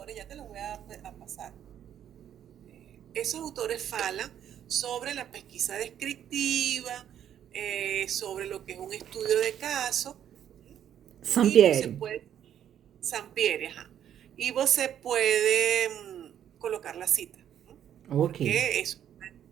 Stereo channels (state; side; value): quieter; left; 10.0 dB